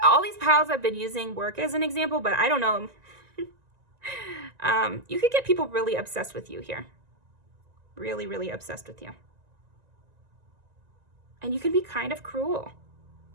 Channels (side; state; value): left; late; 1.9 ms